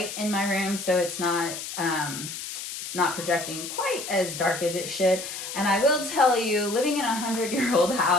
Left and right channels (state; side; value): noise; left; hiss, 8 dB below the sound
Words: in my room, so it's not projecting quite as dark as it should. And I will tell you, living in a 100-year-old